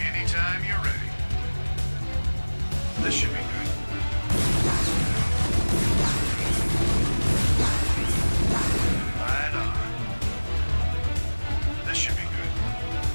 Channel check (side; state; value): both; inverted; correlation -1.00